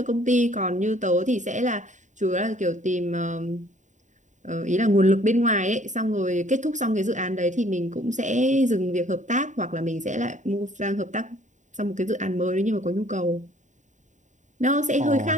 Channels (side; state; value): left; late; 0.36 ms